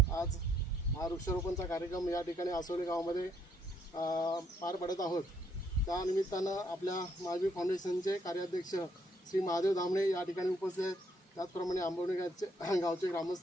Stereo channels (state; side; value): normal; both; correlation 0.71